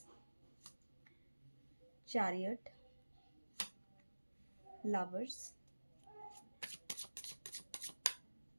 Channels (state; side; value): inverted; both; correlation -1.00